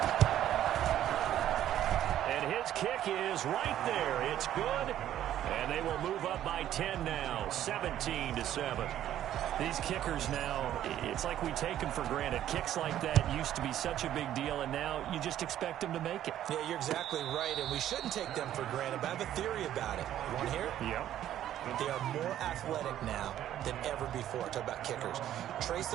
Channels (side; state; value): left; quieter; 11.8 dB